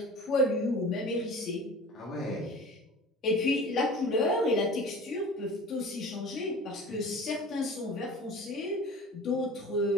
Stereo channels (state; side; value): normal; both; correlation 0.40